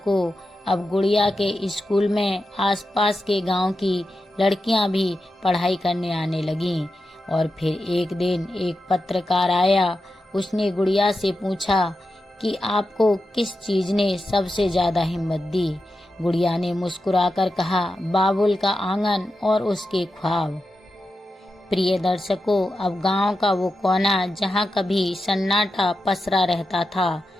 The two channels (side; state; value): both; normal; correlation 0.90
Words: अब गुड़िया के स्कूल में आसपास के गांव की लड़कियां भी पढ़ाई करने आने लगीं। और फिर एक दिन एक पत्रकार आया। उसने गुड़िया से पूछा कि आपको किस चीज ने सबसे ज्यादा हिम्मत दी। गुड़िया ने मुस्कुराकर कहा, बाबुल का आंगन और उसके ख्वाब। प्रिय दर्शकों, अब गांव का वो कोना जहां कभी सन्नाटा पसरा रहता था,